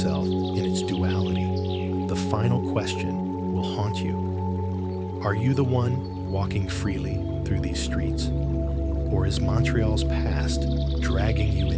in its duality, the final question will haunt you. Are you the one walking freely through these streets? Or is Montreal's past dragging you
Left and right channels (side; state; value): both; identical; correlation 1.00